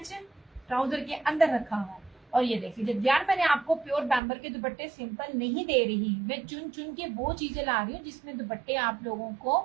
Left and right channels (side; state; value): left; drops out; at 4.2 s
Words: है, ट्राउजर के अंदर रखा हुआ है। और ये देखिए, जब यार मैंने आपको प्योर बैम्बर के दुपट्टे सिंपल नहीं दे रही, मैं चुन चुन के वो चीजें ला रही हूँ जिसमें दुपट्टे आप लोगों